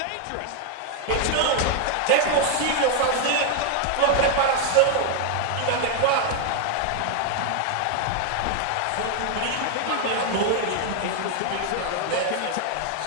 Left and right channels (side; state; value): both; different; correlation 0.00